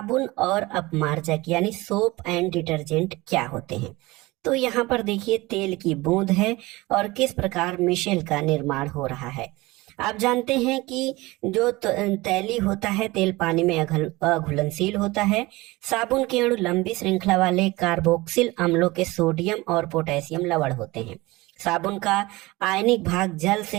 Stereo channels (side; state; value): left; quieter; 21.3 dB